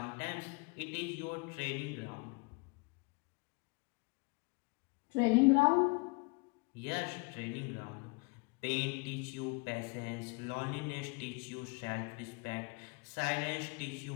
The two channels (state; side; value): quieter; right; 29.4 dB